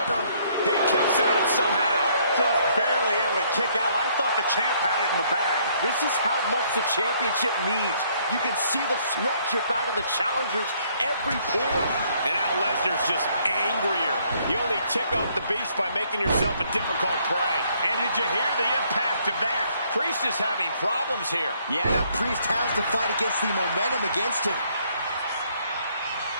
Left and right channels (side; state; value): both; inverted; correlation -0.66